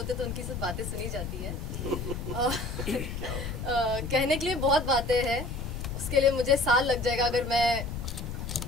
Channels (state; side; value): noise; left; rumble, 6 dB below the sound